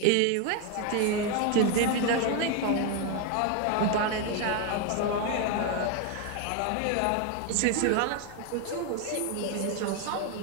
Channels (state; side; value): different; both; correlation 0.01